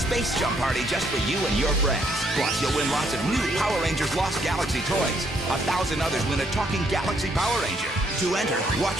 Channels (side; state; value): both; normal; correlation 0.71